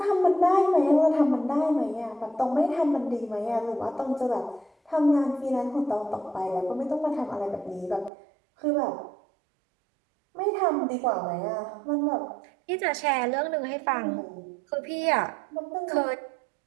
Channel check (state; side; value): drops out; left; at 8.1 s